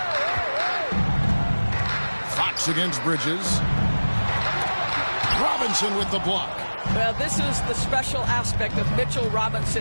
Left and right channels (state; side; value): inverted; both; correlation -1.00